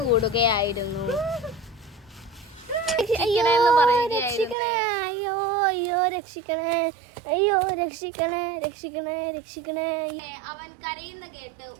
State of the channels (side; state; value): left; drops out; at 4.5 s